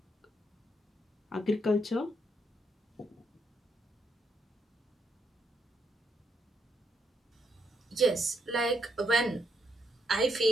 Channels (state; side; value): normal; both; correlation 0.77